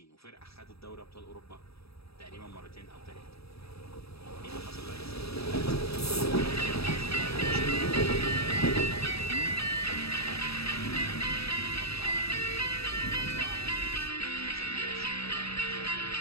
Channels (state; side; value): late; right; 0.77 ms